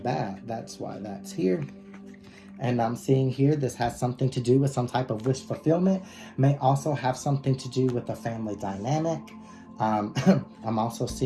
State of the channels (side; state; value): both; identical; correlation 1.00